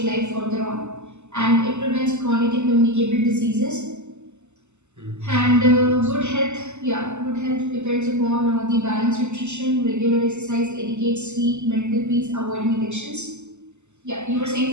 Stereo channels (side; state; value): left; late; 0.83 ms